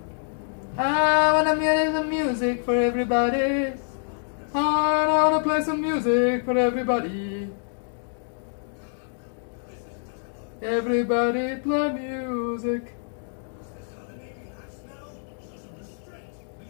I want to play some music for everybody. I want to play some music for everybody. Everybody play music.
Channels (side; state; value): right; silent; digital silence